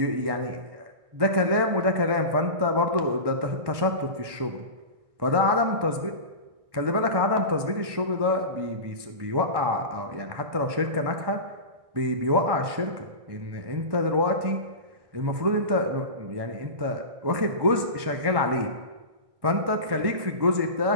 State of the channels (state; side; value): late; left; 1.2 ms